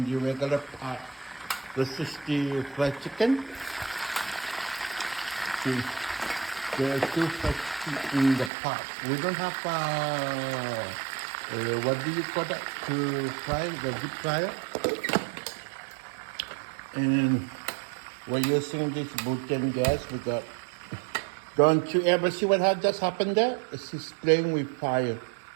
the regular pot. This is the fried chicken. See, there are two fried chicken in the pot. We don't have what do you call that to fry the deep fryer? And we're using this butane gas. We got. Don't you ever see what had just happened there? She's playing with fire.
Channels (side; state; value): left; drops out; at 8.5 s